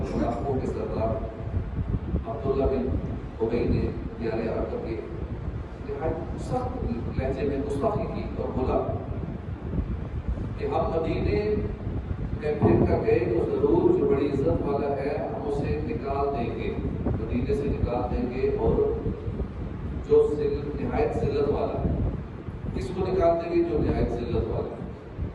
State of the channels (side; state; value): both; identical; correlation 1.00